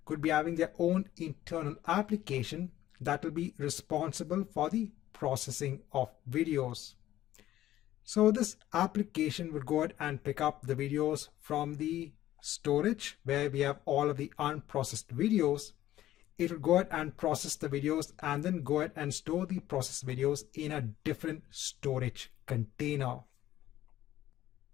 could be having their own internal application that will be responsible for the processing of videos. So this application would go ahead and pick up the videos from the storage where we have all of the unprocessed videos. It will go ahead and process the videos and then go ahead and store the processed videos in a different storage container.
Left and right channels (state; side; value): quieter; right; 13.8 dB